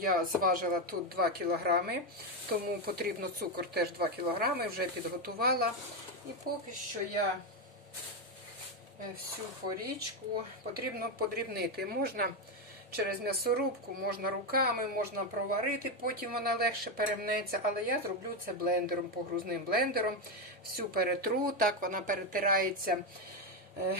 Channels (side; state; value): both; normal; correlation 0.08